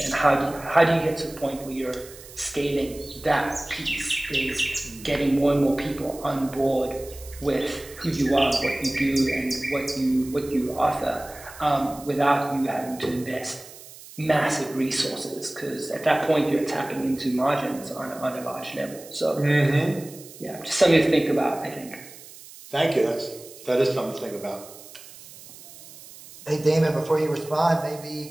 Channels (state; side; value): noise; right; hiss, 18 dB below the sound